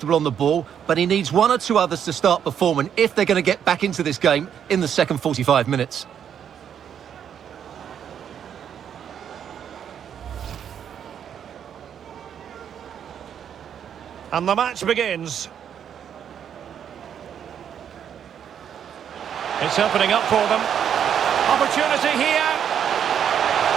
on the ball, but he needs one or two others to start performing if they're going to get back into this game in the second 45 minutes. And the match begins. It's opening up for them. Opportunity here.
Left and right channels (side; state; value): left; quieter; 8.7 dB